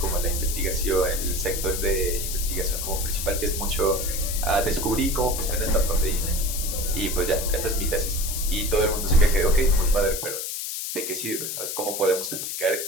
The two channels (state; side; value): noise; left; hiss, 4 dB below the sound